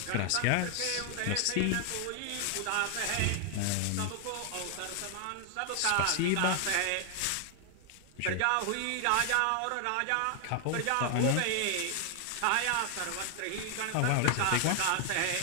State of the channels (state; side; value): different; both; correlation 0.00